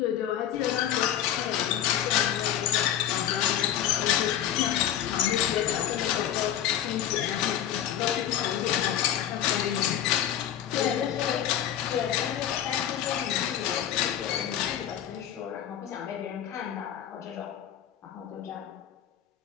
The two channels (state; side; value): quieter; right; 10.6 dB